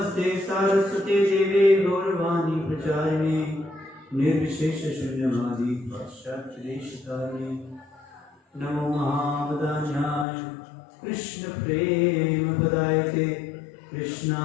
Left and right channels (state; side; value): drops out; right; at 10.2 s